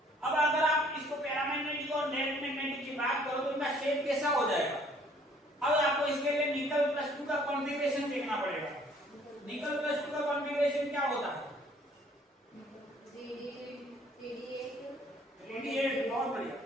अब अगर आप इसको पैरामैग्नेटिक और डायरेक्ट मैग्नेटिक की बात करो तो इनका शेप कैसा हो जाएगा। अब आपको इसके लिए निकल +2 का कॉन्फ़िगरेशन देखना पड़ेगा। निकल +2 का कॉन्फ़िगरेशन क्या होता है 3D8, बहुत बढ़िया।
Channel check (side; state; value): both; normal; correlation 0.59